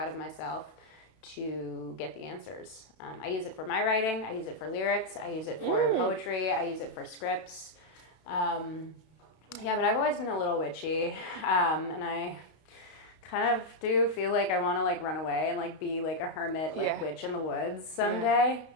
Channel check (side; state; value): right; late; 32 ms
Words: of myself to get the answers. I use it for my writing. I use it for lyrics. I use it for poetry. I use it for scripts. But I've always been a little witchy. And I kind of do feel like I want to like run away and like be like a hermit, like witch in the woods someday.